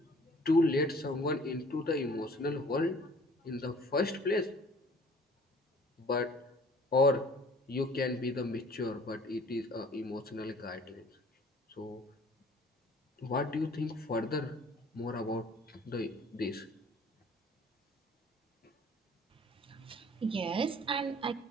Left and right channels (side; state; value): both; normal; correlation 0.52